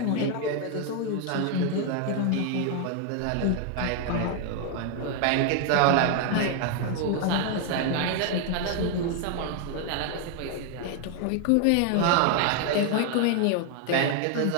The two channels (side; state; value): both; different; correlation 0.00